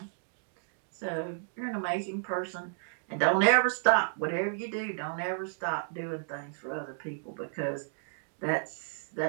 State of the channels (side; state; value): left; silent; digital silence